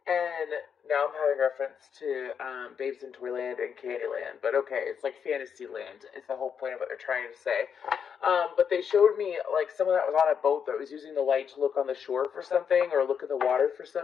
and now I'm having reference to Babes in Toyland and Candyland. But okay, it's like Fantasyland. It's the whole point of what they're trying to say. But they showed me like someone that was on a boat that was using the light to look on the shore for something or look in the water for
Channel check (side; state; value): right; quieter; 7.2 dB